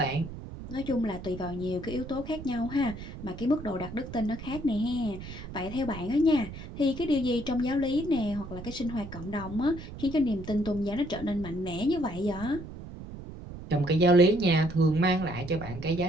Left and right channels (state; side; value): noise; right; rumble, 11 dB below the sound